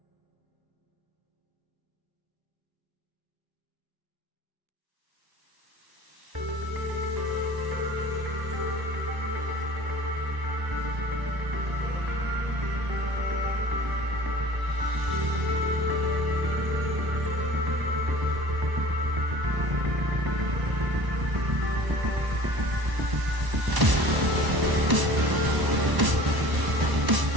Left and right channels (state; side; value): late; left; 1.0 ms